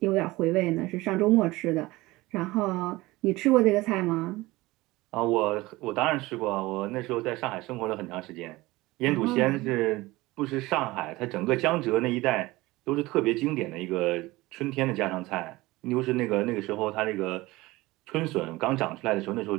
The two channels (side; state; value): left; quieter; 20.0 dB